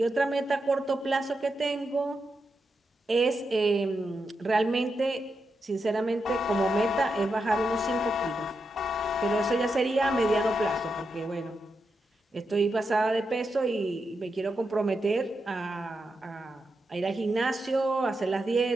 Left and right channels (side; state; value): both; normal; correlation 0.86